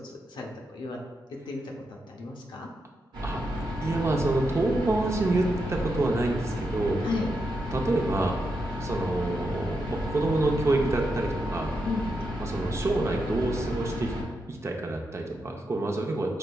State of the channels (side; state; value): both; normal; correlation 0.85